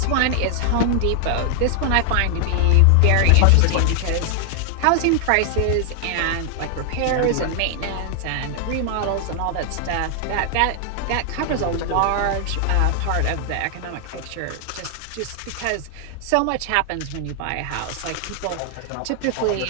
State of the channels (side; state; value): both; different; correlation 0.00